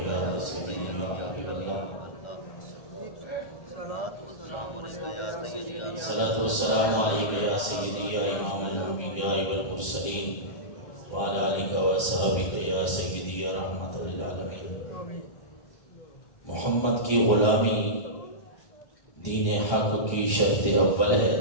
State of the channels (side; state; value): right; late; 1.3 ms